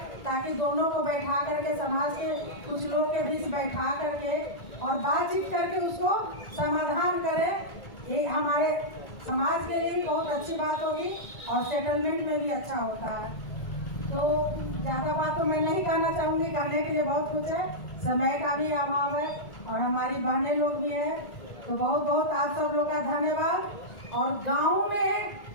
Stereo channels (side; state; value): right; late; 1.9 ms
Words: ताकि दोनों को बैठा करके, समाज के कुछ लोग के बीच बैठा करके और बातचीत करके उसको समाधान करें। ये हमारे समाज के लिए भी बहुत अच्छी बात होगी और सेटलमेंट में भी अच्छा होता है। तो ज़्यादा बात तो मैं नहीं कहना चाहूँगी, कहने के लिए बहुत कुछ है, समय का भी अभाव है और हमारी बहनें लोग भी हैं। तो बहुत बहुत आप सब लोग का धन्यवाद। और गाँव में